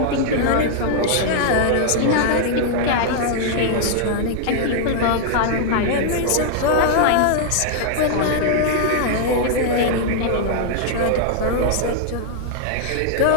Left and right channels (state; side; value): different; both; correlation -0.01